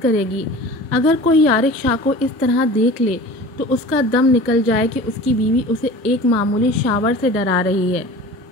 کرے گی۔ اگر کوئی یارق شاہ کو اس طرح دیکھ لے تو اس کا دم نکل جائے کہ اس کی بیوی اسے ایک معمولی شاور سے ڈرا رہی ہے۔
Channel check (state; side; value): normal; both; correlation 0.39